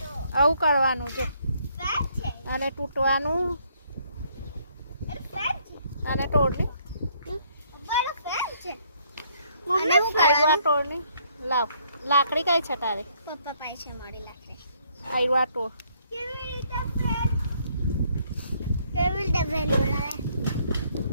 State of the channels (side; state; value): both; inverted; correlation -0.67